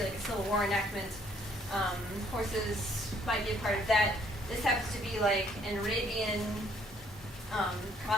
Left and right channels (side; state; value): both; normal; correlation 0.65